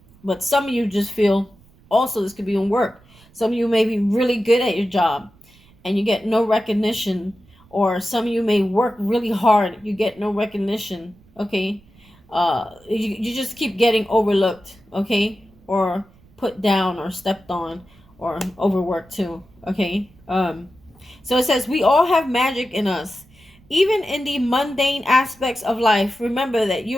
But some of you just feel, also this could be in work. Some of you may be really good at your job and you get no recognition, or some of you may work really hard, you get no recognition, okay? You just keep getting overlooked, okay? Or put down or stepped on or overworked too, okay? So it says, we all have magic in us. Even in the mundane aspects of life, remember that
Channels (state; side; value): noise; right; rumble, 28 dB below the sound